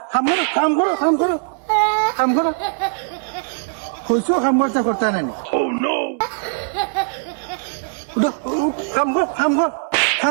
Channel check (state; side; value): silent; left; digital silence